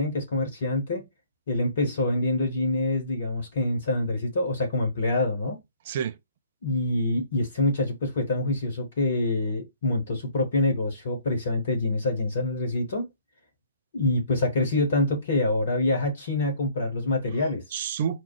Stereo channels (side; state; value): both; inverted; correlation -0.58